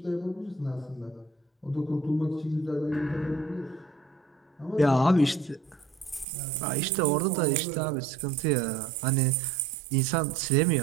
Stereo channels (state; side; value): drops out; left; at 6.2 s